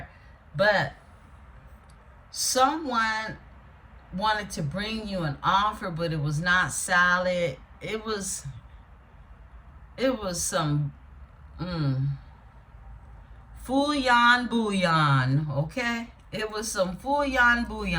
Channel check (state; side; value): identical; both; correlation 1.00